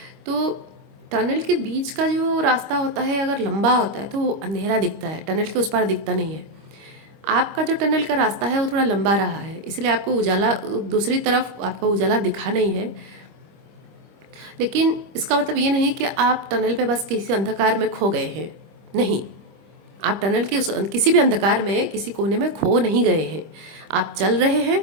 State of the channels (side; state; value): left; late; 25 ms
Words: तो टनल के बीच का जो रास्ता होता है अगर लंबा होता है तो वो अंधेरा दिखता है, टनल के उस पार दिखता नहीं है। आपका जो टनल का रास्ता है वो थोड़ा लंबा रहा है, इसलिए आपको उजाला, दूसरी तरफ आपका उजाला दिखा नहीं है। लेकिन इसका मतलब ये नहीं कि आप टनल पे बस किसी अंधकार में खो गए हैं, नहीं, आप टनल के उस किसी भी अंधकार में किसी कोने में खो नहीं गए हैं, आप चल रहे